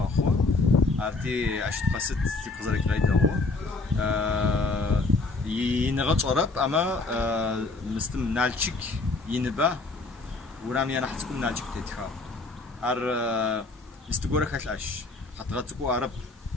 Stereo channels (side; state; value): right; quieter; 3.5 dB